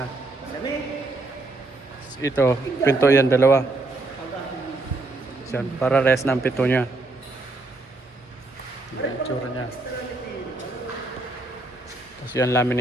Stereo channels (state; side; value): quieter; left; 3.1 dB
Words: Ito, pinto yan, dalawa. Yan, para rest ng pinto niya. Ganyan ang itsura niya. Tapos yan,